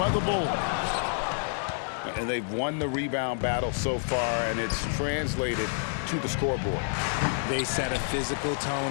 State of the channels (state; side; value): silent; right; 59 dB below the other